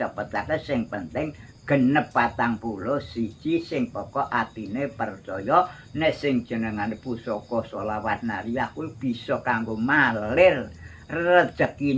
sing penting genep 41 sing pokok atine percaya nek sing jenengane pusaka sholawat nariyah kuwi bisa kanggo malir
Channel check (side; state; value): both; identical; correlation 1.00